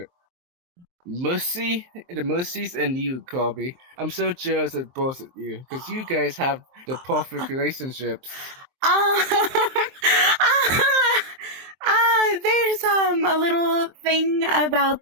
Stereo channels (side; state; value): left; late; 23 ms